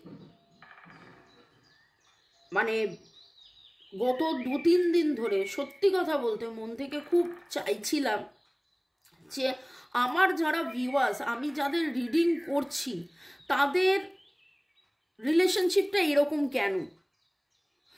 মানে গত 2-3 দিন ধরে সত্যি কথা বলতে মন থেকে খুব চাইছিলাম যে আমার যারা ভিউয়ার্স, আমি যাদের রিডিং করছি, তাদের রিলেশনশিপটা এরকম কেন,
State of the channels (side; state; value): both; identical; correlation 1.00